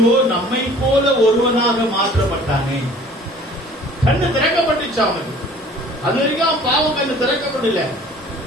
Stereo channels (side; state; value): both; normal; correlation 0.50